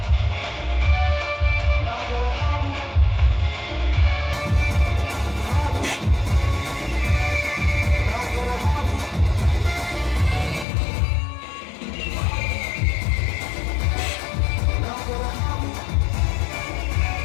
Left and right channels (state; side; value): drops out; right; at 10.7 s